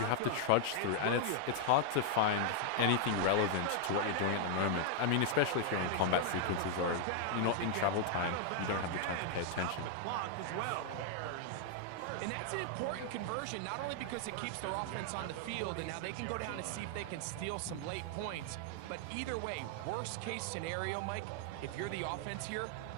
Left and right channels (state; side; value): different; both; correlation 0.00